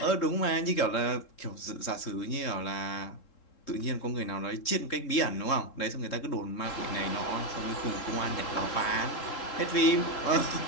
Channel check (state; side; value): late; right; 3.7 ms